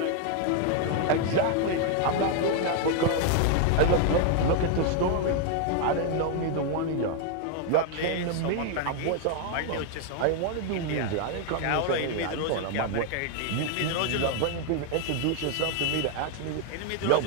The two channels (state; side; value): different; both; correlation 0.01